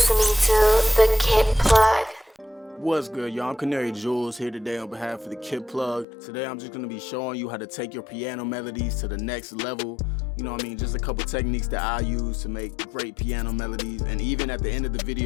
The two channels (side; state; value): right; drops out; at 6.1 s